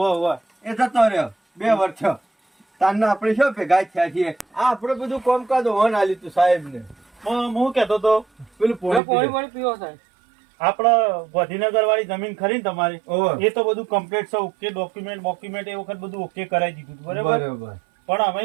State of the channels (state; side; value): drops out; left; at 9.0 s